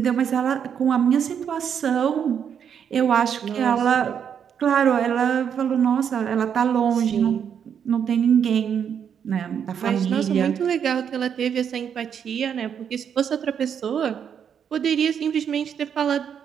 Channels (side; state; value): left; quieter; 8.0 dB